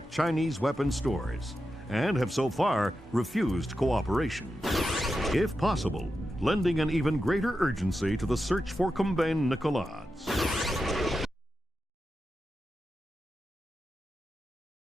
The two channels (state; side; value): normal; both; correlation 0.89